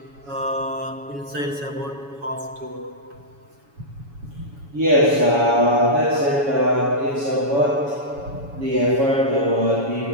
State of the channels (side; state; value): left; late; 7.1 ms